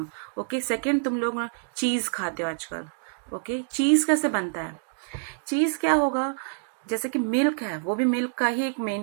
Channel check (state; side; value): silent; left; digital silence